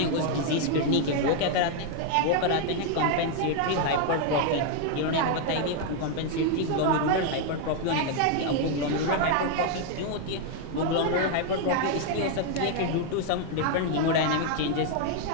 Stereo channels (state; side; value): different; both; correlation 0.00